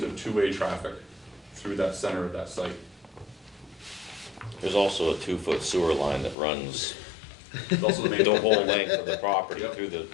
of two-way traffic through that center of that site. There's also a 2-foot sewer line that runs It's also the main. the whole length of the property through the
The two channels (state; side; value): drops out; right; at 6.4 s